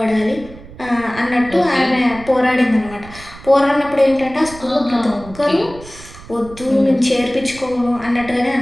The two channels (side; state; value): right; noise; rumble, 18 dB below the sound